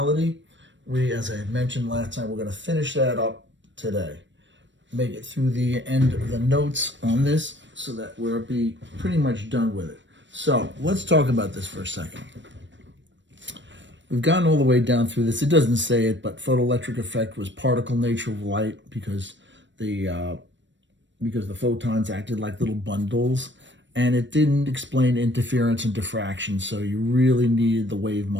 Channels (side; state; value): left; late; 0.53 ms